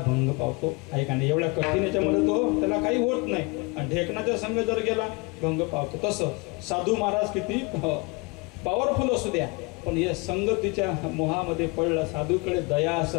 भंग पावतो, आहे का नाही. एवढ्या कठीण याच्यामध्ये तो त्याला काही होत नाही, आणि ढेकणाचा संघ जर गेला भंग पावतो. तसं साधू महाराज किती पॉवरफुल असू द्या, पण या संगतीच्या मोहामध्ये पडला. साधूकडे दया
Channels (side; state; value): right; quieter; 27.9 dB